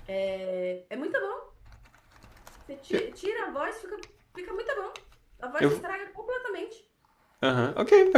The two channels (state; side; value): identical; both; correlation 1.00